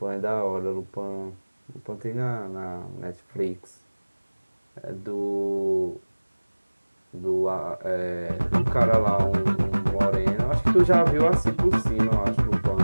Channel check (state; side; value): inverted; both; correlation -1.00